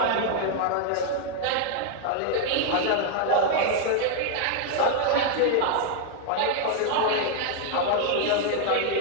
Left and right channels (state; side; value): different; both; correlation 0.00